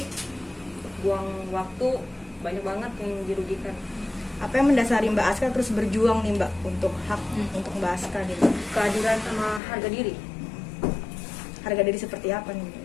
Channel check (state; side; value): drops out; right; at 9.6 s